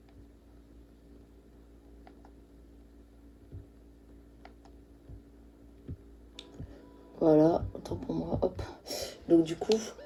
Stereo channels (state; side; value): identical; both; correlation 1.00